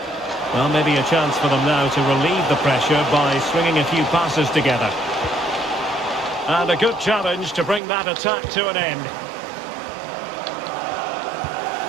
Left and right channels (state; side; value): drops out; left; at 7.8 s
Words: Well, maybe a chance for them now to relieve the pressure by swinging a few passes together. And a good challenge to bring that attack to an end.